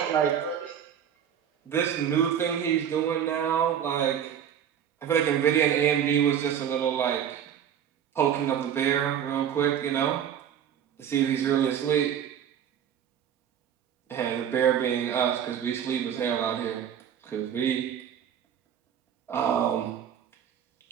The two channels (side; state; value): left; quieter; 9.0 dB